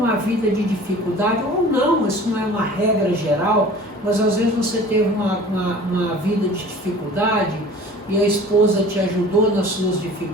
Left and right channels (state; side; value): normal; both; correlation 0.44